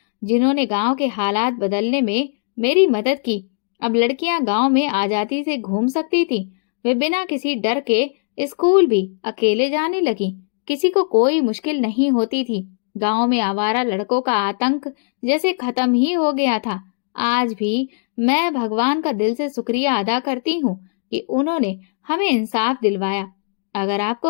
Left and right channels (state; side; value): silent; right; digital silence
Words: जिन्होंने गांव के हालात बदलने में मेरी मदद की। अब लड़कियां गांव में आजादी से घूम सकती थी। वे बिना किसी डर के स्कूल भी अकेले जाने लगी। किसी को कोई मुश्किल नहीं होती थी। गांव में आवारा लड़कों का आतंक जैसे खत्म ही हो गया था। आज भी मैं भगवान का दिल से शुक्रिया अदा करती हूँ कि उन्होंने हमें इंसाफ दिलवाया। अगर